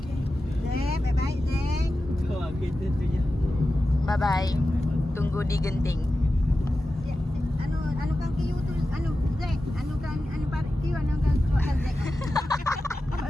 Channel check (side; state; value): both; normal; correlation 0.93